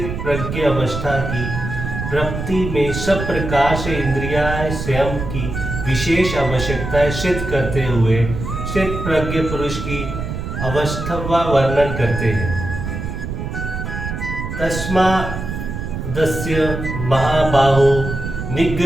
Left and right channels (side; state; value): right; noise; rumble, 5 dB below the sound